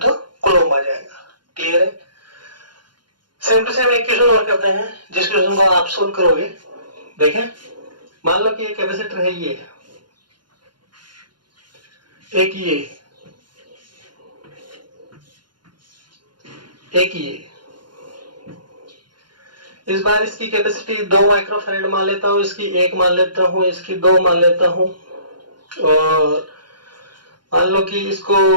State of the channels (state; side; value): late; left; 0.71 ms